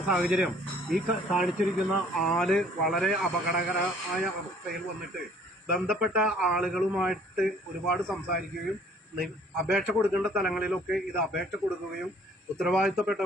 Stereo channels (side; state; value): both; normal; correlation 0.57